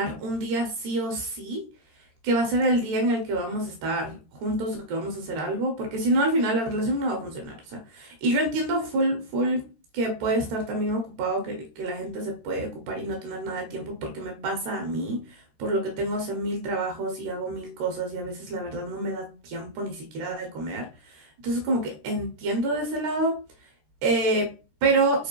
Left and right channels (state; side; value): late; left; 13 ms